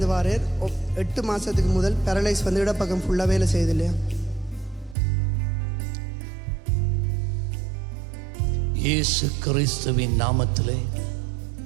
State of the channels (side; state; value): left; drops out; at 5.0 s